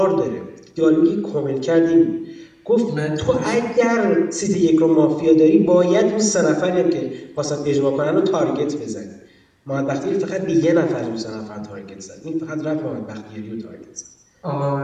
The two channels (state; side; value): identical; both; correlation 1.00